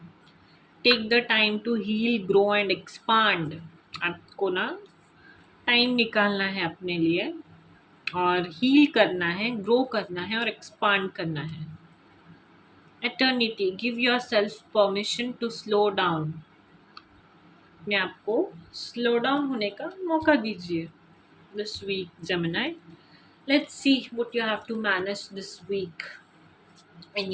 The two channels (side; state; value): both; identical; correlation 1.00